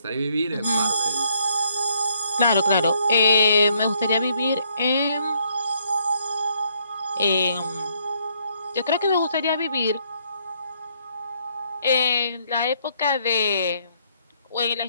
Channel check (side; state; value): both; inverted; correlation -0.69